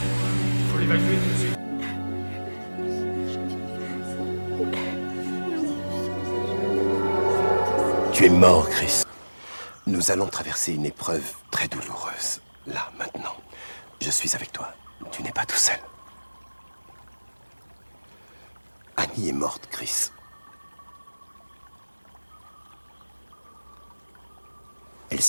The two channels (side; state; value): both; inverted; correlation -1.00